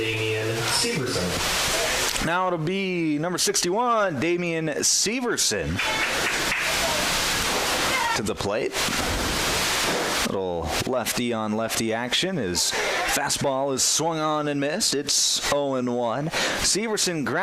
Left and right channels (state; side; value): identical; both; correlation 1.00